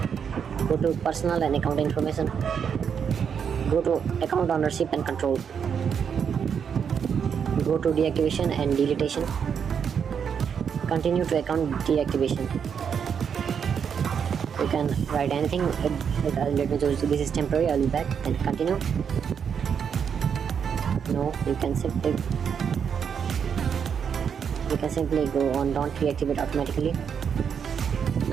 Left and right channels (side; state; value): left; quieter; 7.2 dB